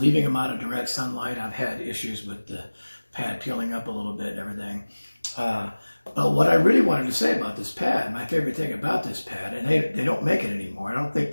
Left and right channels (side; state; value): both; inverted; correlation -1.00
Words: them out of direct sunlight. I've had issues with the pad peeling up a little bit and everything. But what I really wanted to say about this pad, my favorite thing about this pad, and they don't make it anymore. I don't think